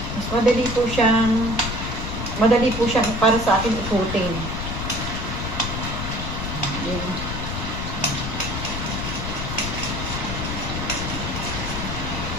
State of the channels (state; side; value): noise; left; rumble, 4 dB below the sound